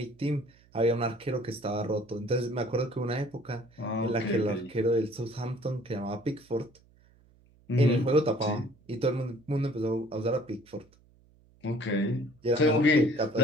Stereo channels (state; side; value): noise; right; hum, 30 dB below the sound